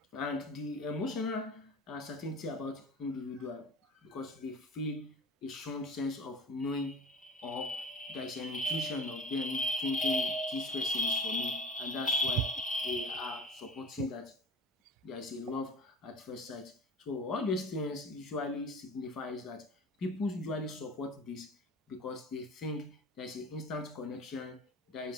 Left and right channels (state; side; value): normal; both; correlation 0.37